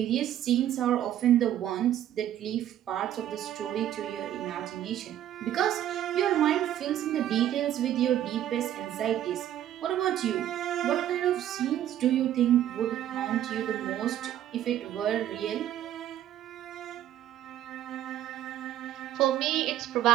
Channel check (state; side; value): quieter; left; 11.6 dB